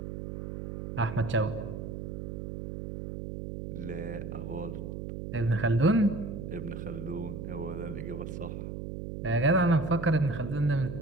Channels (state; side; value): noise; right; hum, 7 dB below the sound